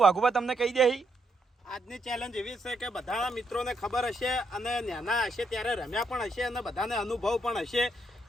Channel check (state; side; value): normal; both; correlation 0.77